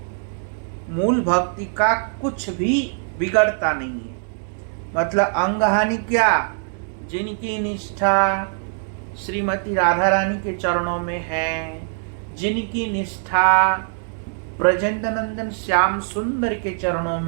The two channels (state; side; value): silent; left; 64 dB below the other